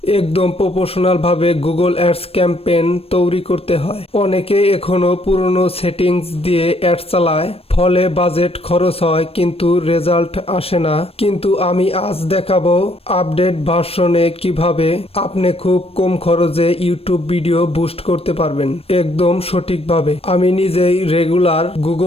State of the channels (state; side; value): late; right; 0.28 ms